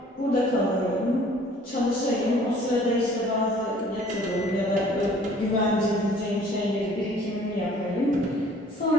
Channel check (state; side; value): normal; both; correlation 0.54